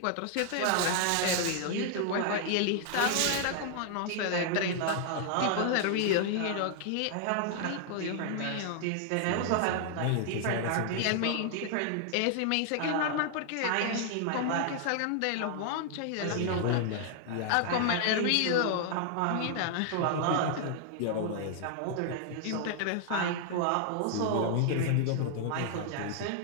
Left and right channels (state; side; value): different; both; correlation 0.00